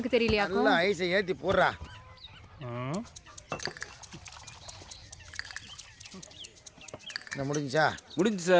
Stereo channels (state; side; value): identical; both; correlation 1.00